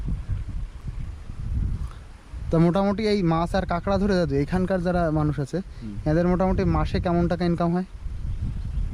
তা মোটামুটি এই মাছ আর কাঁকড়া ধরে দাদু এখানকার যারা মানুষ আছে, এদের মোটামুটি মাসে কেমন টাকা ইনকাম হয়?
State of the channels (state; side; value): identical; both; correlation 1.00